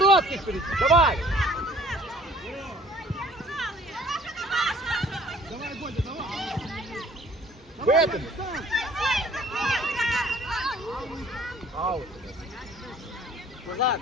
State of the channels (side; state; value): both; normal; correlation 0.55